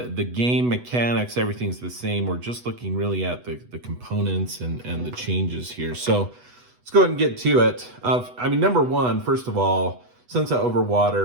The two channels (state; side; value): late; left; 8.1 ms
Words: game mechanics, everything's the same. We're just looking really at the components and the changes here. So let's go ahead and get to it. Number one, first of all, Sunset Over